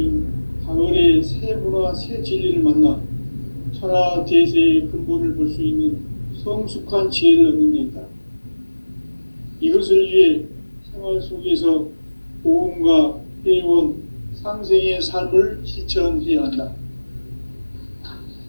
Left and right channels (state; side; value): inverted; both; correlation -1.00